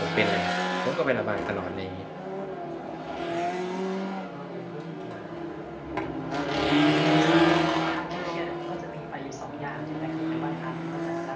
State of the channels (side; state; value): both; identical; correlation 1.00